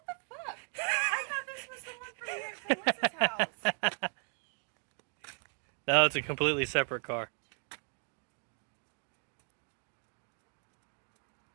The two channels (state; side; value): quieter; left; 40.0 dB